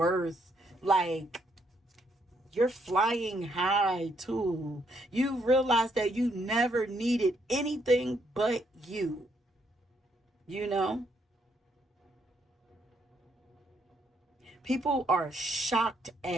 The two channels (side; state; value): both; normal; correlation 0.73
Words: Like, you're flying high too. You realize that you never needed anything but you know people are shocked